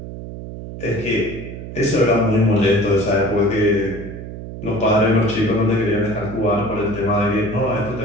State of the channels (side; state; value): right; noise; hum, 10 dB below the sound